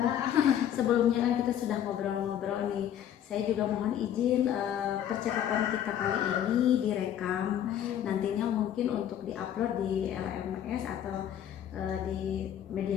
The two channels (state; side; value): quieter; right; 10.2 dB